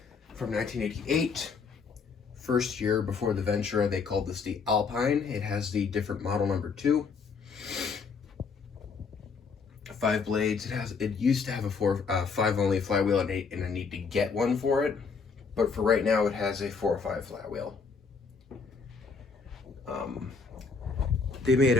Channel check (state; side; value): quieter; right; 5.1 dB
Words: From 1988, first year before the Ventura, they called this the Alpine. It has the different model number 2. 5 blades. It used to have a 5 only flywheel, and I need to get one for it. But for right now, it has a 4 or 5 flywheel. They made